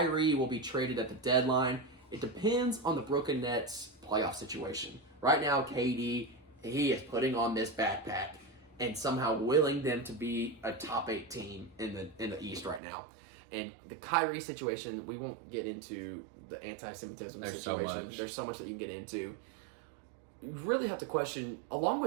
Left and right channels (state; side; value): drops out; left; at 12.8 s